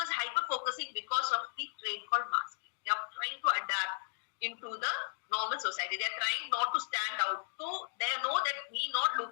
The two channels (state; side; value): silent; right; digital silence